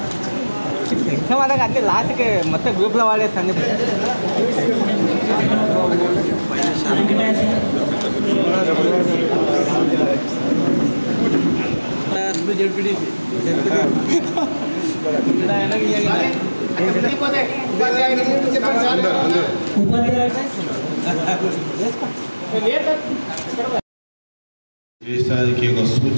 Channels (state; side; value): inverted; both; correlation -1.00